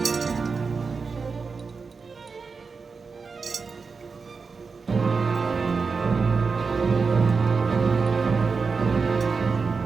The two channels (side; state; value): left; quieter; 4.9 dB